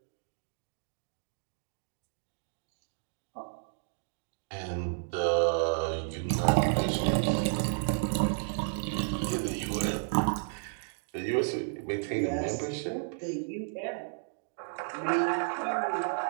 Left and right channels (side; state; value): left; silent; digital silence